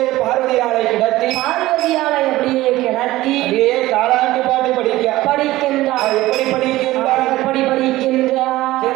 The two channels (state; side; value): quieter; left; 17.2 dB